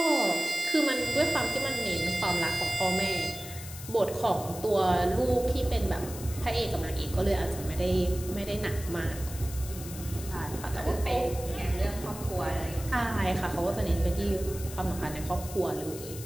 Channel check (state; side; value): noise; left; hiss, 13 dB below the sound